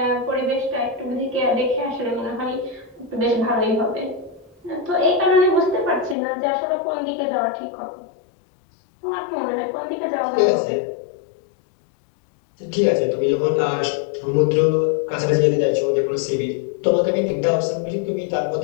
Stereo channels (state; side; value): drops out; right; at 6.2 s